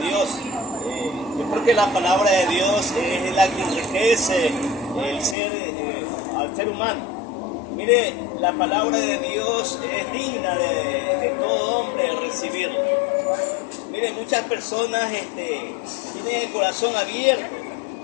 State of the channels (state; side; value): drops out; right; at 5.4 s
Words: Yo creo que la palabra de Dios es la que enriquece al ser humano. Mire, la palabra de Dios es digna de todo hombre recibirla. Mire, muchas personas tienen el corazón abierto